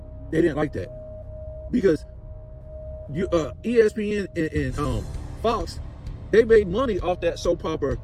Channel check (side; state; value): both; identical; correlation 1.00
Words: they didn't like that. Because ESPN and Fox, they made money off that soap opera